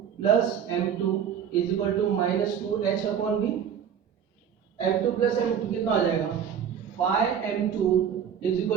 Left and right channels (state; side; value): quieter; left; 8.3 dB